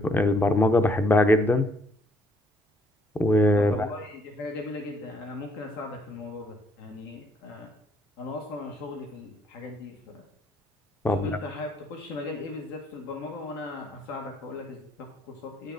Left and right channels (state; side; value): normal; both; correlation 0.67